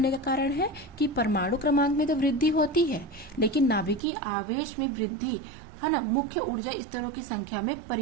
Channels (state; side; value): drops out; left; at 4.0 s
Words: का कारण है कि परमाणु क्रमांक में तो वृद्धि होती है लेकिन नाभिकीय आवेश में वृद्धि है ना, मुख्य ऊर्जा स्तरों की संख्या में